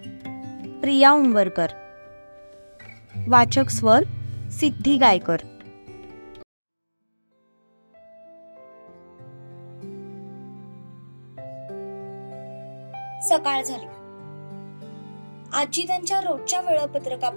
प्रिया उंबरकर. वाचक स्वर सिद्धी गायकर. सकाळ झाली. आजी त्यांच्या रोजच्या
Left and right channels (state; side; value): inverted; both; correlation -1.00